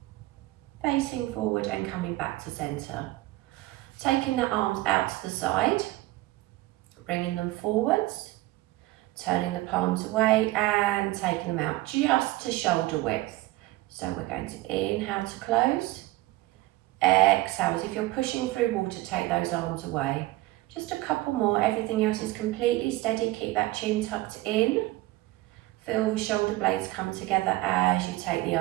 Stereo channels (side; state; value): left; quieter; 18.4 dB